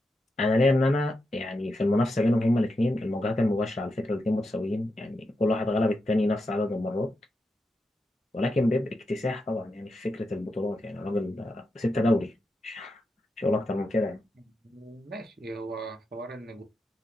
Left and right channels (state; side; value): normal; both; correlation 0.87